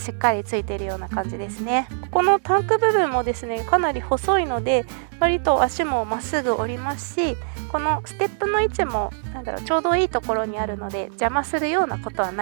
っかりついているような感じですね。ここのタンク部分もですねかなり細いので割と足もまっすぐ折りますし、このステップの位置もちょうどいいところにあるので邪魔するようなことは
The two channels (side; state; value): left; silent; digital silence